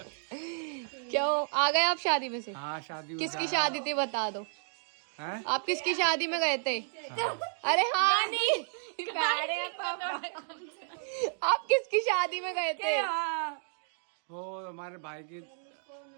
क्यों आ गए आप शादी में से? हाँ शादी। किसकी शादी थी बता दो। हैं? आप किसकी शादी में गए थे? अरे हाँ नहीं, आप किसकी शादी में गए थे? वो हमारे भाई की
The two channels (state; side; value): silent; left; digital silence